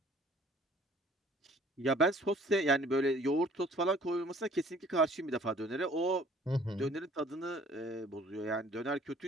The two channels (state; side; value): normal; both; correlation 0.55